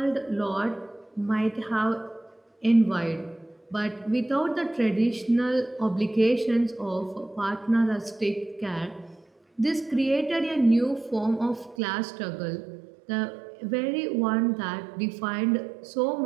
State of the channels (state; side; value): drops out; left; at 11.8 s